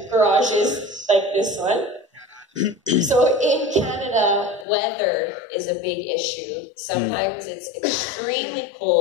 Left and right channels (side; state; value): right; drops out; at 4.7 s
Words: garages like this one. So in Canada, weather is a big issue. Sometimes it's extremely